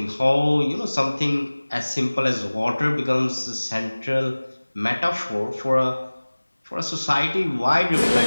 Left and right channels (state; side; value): inverted; both; correlation -1.00